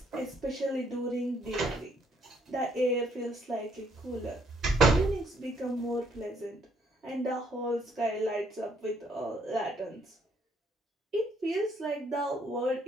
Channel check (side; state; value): both; normal; correlation 0.69